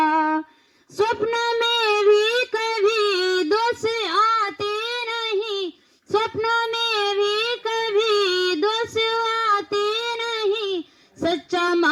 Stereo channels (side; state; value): both; identical; correlation 1.00